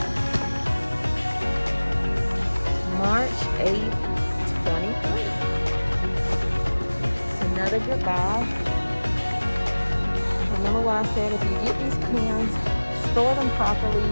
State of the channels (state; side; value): inverted; both; correlation -1.00